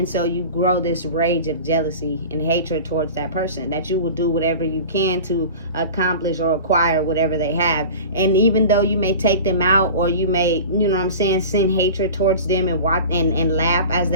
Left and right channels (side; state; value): both; inverted; correlation -0.36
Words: so you grow this rage of jealousy and hatred towards that person, that you will do whatever you can to accomplish or acquire whatever they have. And even though you may take them out, or you may, you know what I'm saying, send hatred towards them and watch and laugh as